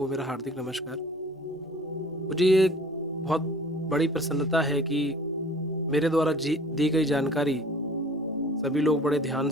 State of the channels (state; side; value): normal; both; correlation 0.48